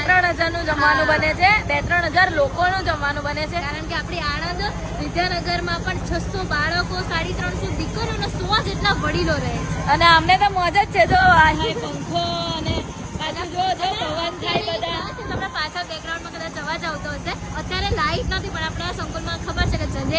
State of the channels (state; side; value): identical; both; correlation 1.00